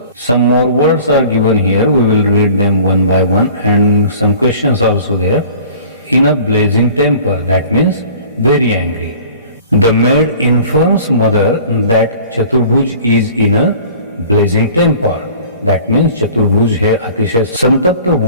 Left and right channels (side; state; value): both; inverted; correlation -0.47